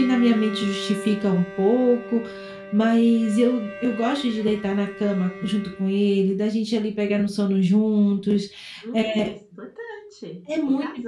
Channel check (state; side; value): identical; both; correlation 1.00